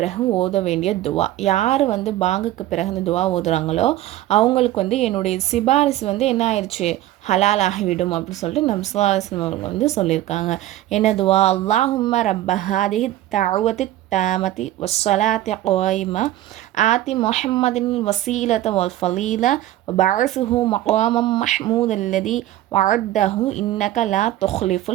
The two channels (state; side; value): quieter; left; 14.4 dB